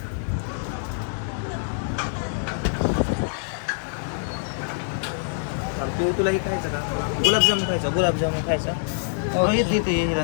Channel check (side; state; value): right; silent; digital silence